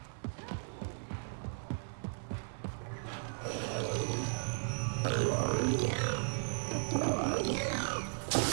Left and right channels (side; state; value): left; silent; 54 dB below the other